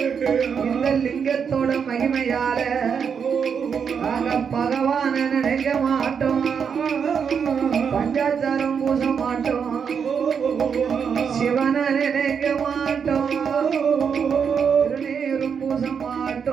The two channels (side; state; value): left; quieter; 6.8 dB